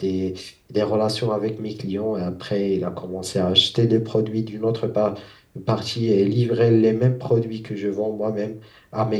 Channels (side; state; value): both; identical; correlation 1.00